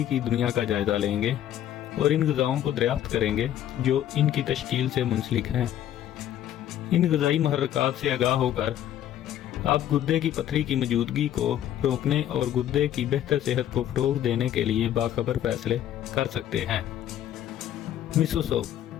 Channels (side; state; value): right; quieter; 11.4 dB